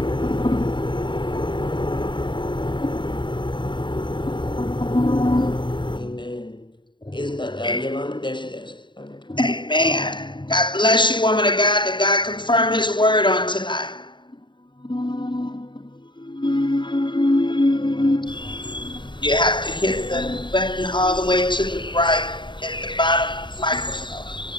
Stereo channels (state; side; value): late; right; 0.23 ms